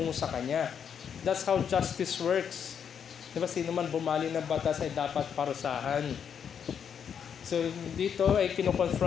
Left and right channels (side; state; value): right; quieter; 7.7 dB